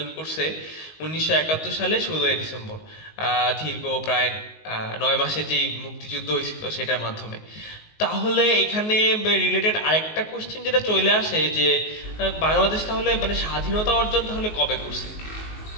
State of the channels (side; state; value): right; late; 19 ms